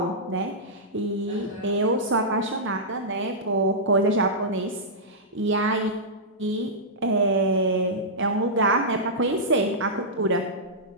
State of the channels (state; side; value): normal; both; correlation -0.13